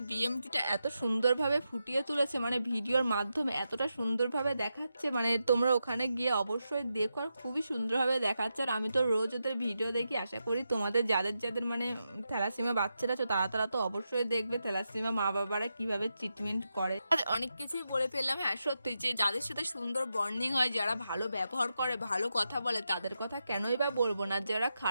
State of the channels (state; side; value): inverted; both; correlation -0.87